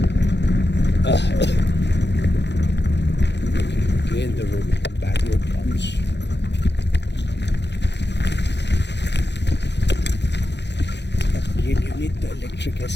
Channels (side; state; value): right; late; 0.50 ms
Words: Again the road, bad road comes. Again you need the electric